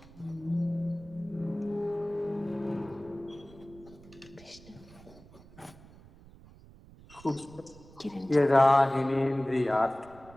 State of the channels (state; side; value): noise; right; rumble, 22 dB below the sound